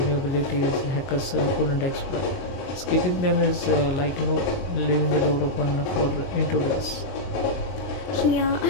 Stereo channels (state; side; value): late; right; 22 ms